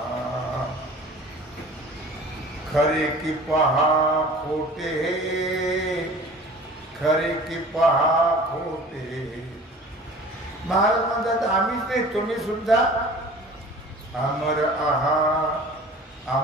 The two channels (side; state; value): both; normal; correlation 0.44